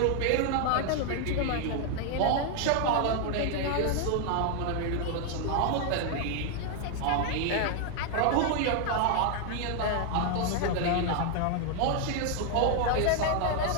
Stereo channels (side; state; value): both; different; correlation 0.00